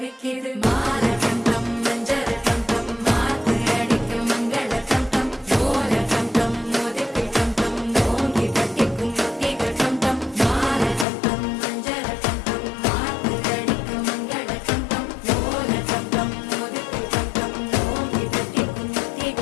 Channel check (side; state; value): right; drops out; at 11.1 s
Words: மால கண்டம் மஞ்சள் கண்டம் மாத்து அடிக்கும் மங்கள கண்டம் ஓல கண்டம் மோதிக்கு கண்டம் ஓங்கி தட்டிக்கும் முத்திக கண்டம் மால கண்டம் மஞ்சள் கண்டம் மாத்து அடிக்கும் மங்கள கண்டம் ஓல கண்டம் மோதிக்கு கண்டம் ஓங்கி தட்டிக்கும்